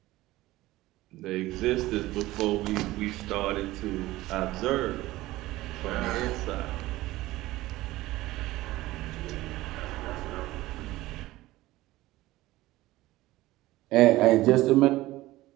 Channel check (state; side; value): quieter; left; 17.5 dB